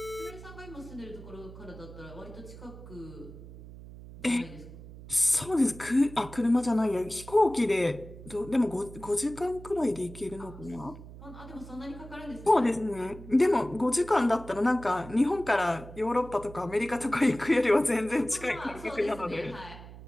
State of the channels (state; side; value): noise; right; hum, 16 dB below the sound